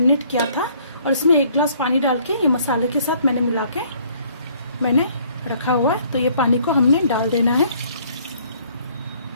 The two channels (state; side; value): inverted; both; correlation -0.61